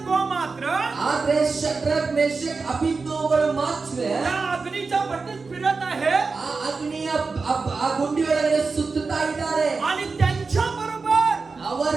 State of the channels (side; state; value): left; quieter; 4.4 dB